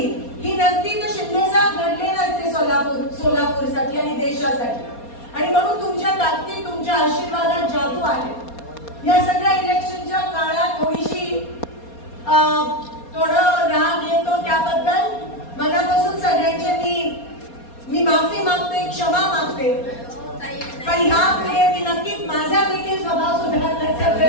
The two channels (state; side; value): late; right; 4.2 ms